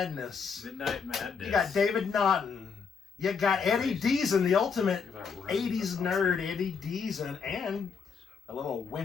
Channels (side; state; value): right; quieter; 5.9 dB